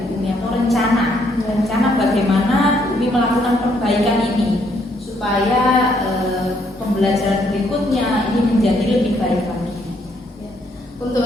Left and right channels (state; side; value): normal; both; correlation 0.71